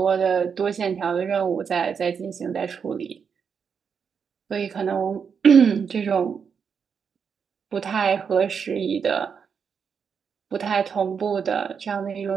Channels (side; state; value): left; quieter; 6.5 dB